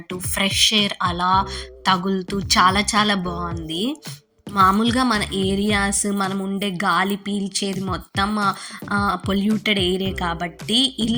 ఫ్రెష్ ఎయిర్ అలా తగులుతూ చాలా చాలా బాగుంది. మామూలుగా మన ఏరియాస్ మనం ఉండే గాలి పీల్చేది మొత్తం పొల్యూటెడ్ ఏరియా కాబట్టి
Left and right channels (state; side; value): identical; both; correlation 1.00